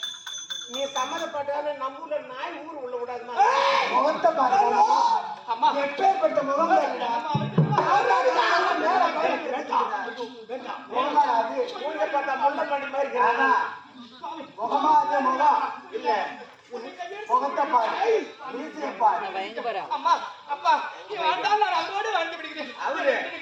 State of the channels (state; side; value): identical; both; correlation 1.00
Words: நீ சம்மதப்பட்டாலும் நம்ம ஊர்ல நாய் ஊர் உள்ள விடாதுமா முகத்தை பாருங்க அம்மா எப்பேற்பட்ட முகம் முள்ளப்பண்ணி மாதிரி முகமா அதே முகம் இல்ல முகத்தை பாரு அம்மா அப்பா